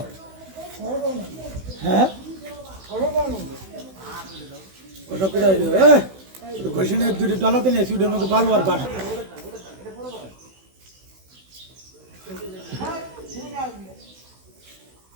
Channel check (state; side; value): late; left; 16 ms